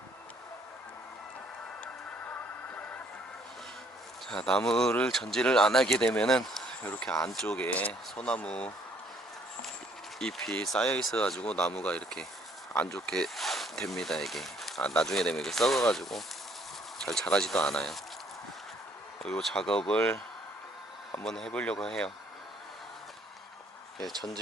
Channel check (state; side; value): normal; both; correlation 0.64